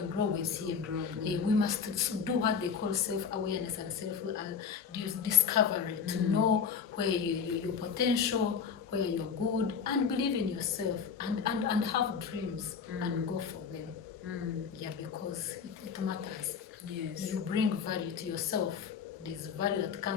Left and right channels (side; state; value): right; quieter; 6.4 dB